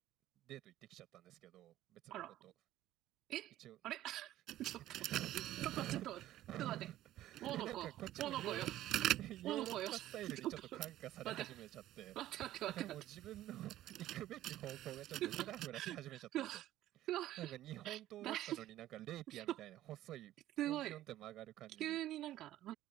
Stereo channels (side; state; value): left; quieter; 14.0 dB